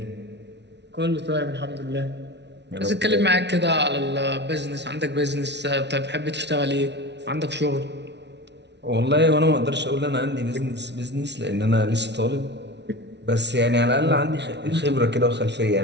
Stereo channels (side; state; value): left; late; 0.50 ms